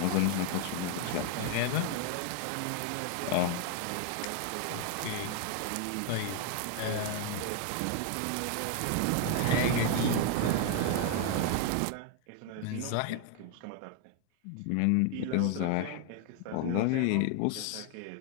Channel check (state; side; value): different; both; correlation 0.00